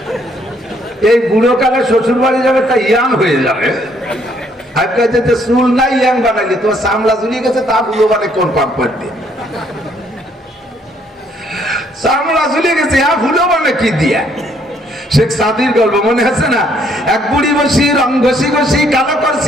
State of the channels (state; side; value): normal; both; correlation 0.67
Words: এই বুড়ো কালে শ্বশুর বাড়ি যাবে, তা ইয়াং হয়ে যাবে। চুল নাই ইয়াং বানাইলে তোমার চামড়া ঝুলিয়ে গেছে, তা বুড়ো মানে কোন পাম্পার দিয়ে চামড়া ঝুলিয়ে গেছে, বুড়ো মানে কি দিয়া? শেখ সাদির গল্প মনে আছে না? এক বুড়ি বসি রং ঘষি ঘষি কালো